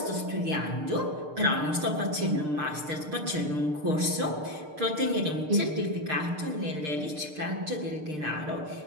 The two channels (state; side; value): late; left; 6.6 ms